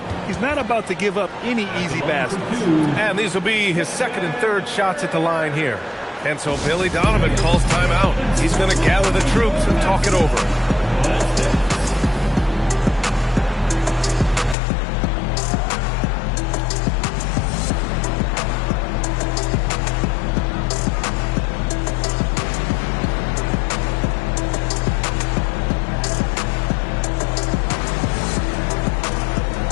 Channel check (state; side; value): drops out; right; at 14.6 s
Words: He's not about to give up any easy baskets. And these will be his 2nd and 3rd shots at the line here. And so Billy Donovan calls timeout. He's going to gather the troops and talk it over.